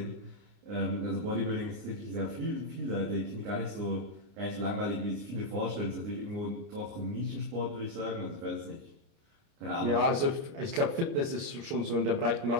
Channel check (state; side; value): late; left; 29 ms